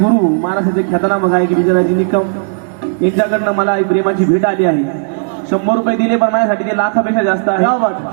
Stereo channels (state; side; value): silent; left; digital silence